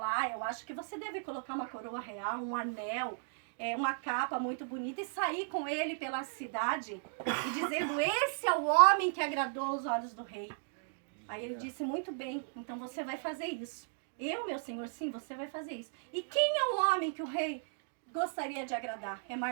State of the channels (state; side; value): silent; left; digital silence